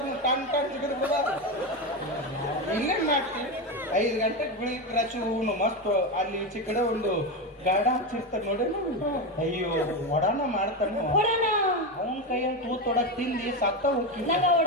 ಟನ್ ಟನ್ ಸಿಗಿದ್ರು ಇಲ್ಲೇನ್ ಮಾಡ್ತೀವಿ. 5 ಗಂಟೆಗೆ ಬೆಳಿಗ್ಗೆ ರಚು ಹೂನು ಮಸ್ತ್ ಅಲ್ಲಿ ಈಚೆ ಕಡೆ ಒಂದು ಗಾಡ ಹಚ್ಚಿರ್ತಾರೆ ನೋಡಿ. ಅಯ್ಯೋ ಒಡಾನ ಮಾಡ್ತಾನ ಅವನ ಕೈಯನ್ನು ತೂತೊಡಕ್ ತಿಂದಿ ಸತ್ತ ಹೋಗಿ ನಂಗ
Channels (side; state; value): both; normal; correlation 0.15